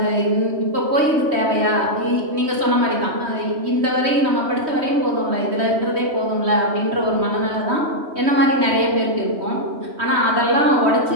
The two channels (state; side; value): late; left; 3.1 ms